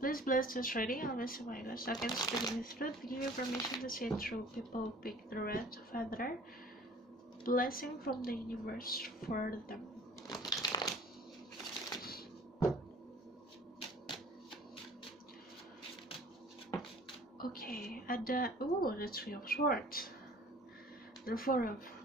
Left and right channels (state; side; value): normal; both; correlation 0.49